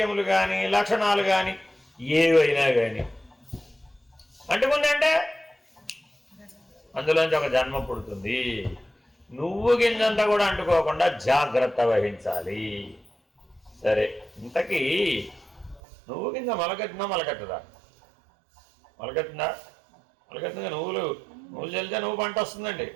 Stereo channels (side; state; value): left; drops out; at 15.8 s